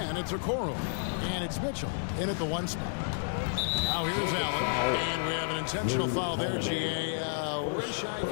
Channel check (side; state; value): right; silent; digital silence